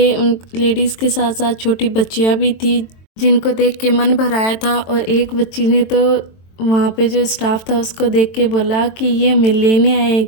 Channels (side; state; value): right; late; 23 ms